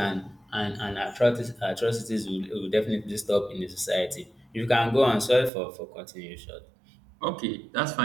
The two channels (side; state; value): left; drops out; at 5.5 s